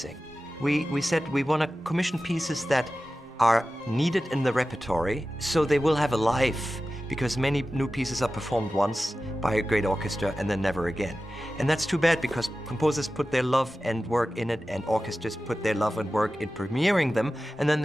We said we want to commission pieces that are needed in the repertory, so they will have a life, because many new pieces are performed once by a great orchestra and then never again. And that's too bad, because composers put their love and work in it, and orchestras put their love and work in premiering them, and then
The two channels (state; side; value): normal; both; correlation 0.94